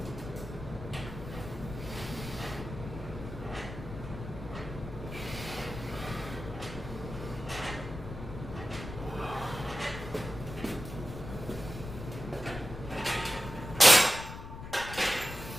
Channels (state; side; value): noise; left; rumble, 10 dB below the sound